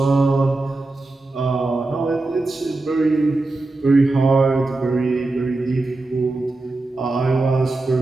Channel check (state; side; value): quieter; left; 3.1 dB